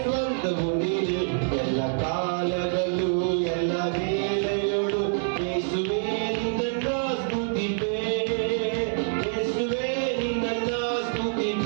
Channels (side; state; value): left; silent; digital silence